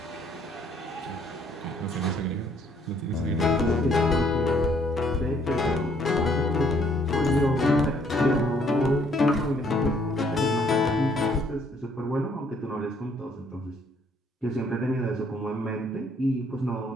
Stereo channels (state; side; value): normal; both; correlation 0.65